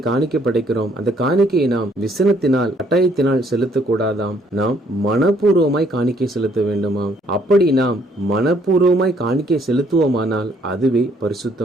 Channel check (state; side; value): normal; both; correlation 0.66